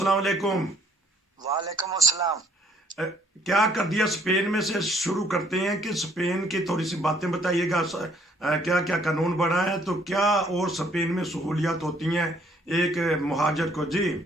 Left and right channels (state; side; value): normal; both; correlation 0.64